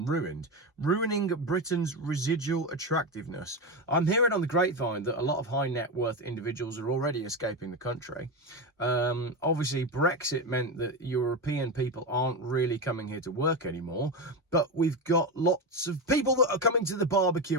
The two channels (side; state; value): both; normal; correlation 0.16